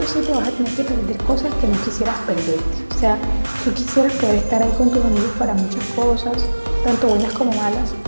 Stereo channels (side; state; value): both; inverted; correlation -1.00